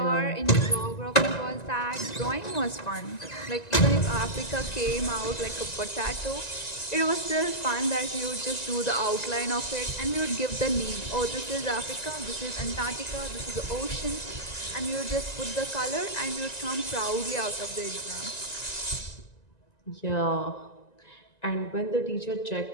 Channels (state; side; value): late; right; 1.9 ms